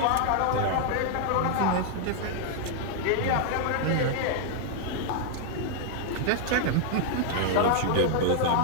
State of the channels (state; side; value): different; both; correlation 0.00